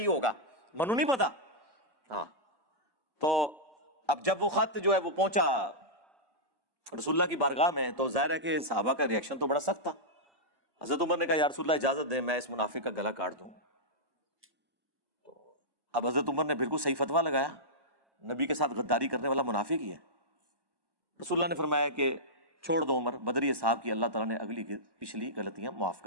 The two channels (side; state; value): left; late; 1.1 ms